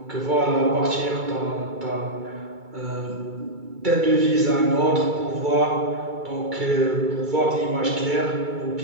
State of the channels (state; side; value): late; left; 2.3 ms